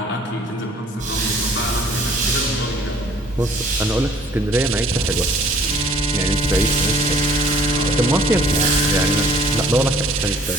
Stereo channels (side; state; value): both; normal; correlation 0.55